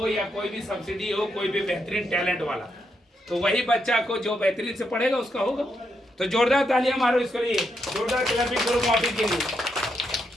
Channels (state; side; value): normal; both; correlation 0.81